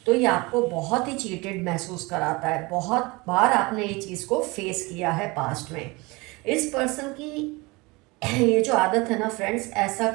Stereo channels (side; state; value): left; quieter; 24.7 dB